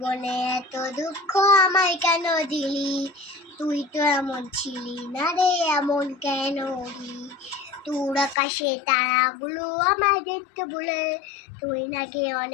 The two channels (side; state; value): right; drops out; at 8.3 s